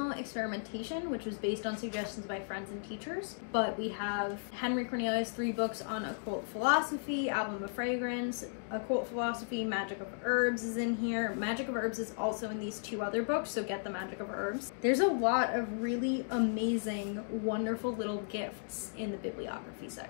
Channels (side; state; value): right; silent; digital silence